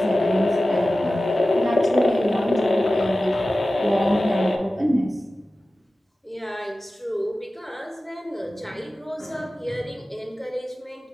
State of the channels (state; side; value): normal; both; correlation 0.95